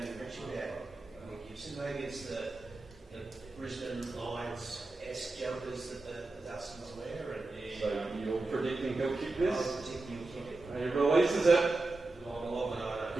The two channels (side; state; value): left; quieter; 3.2 dB